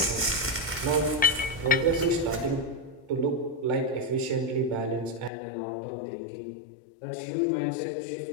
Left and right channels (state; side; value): drops out; right; at 5.3 s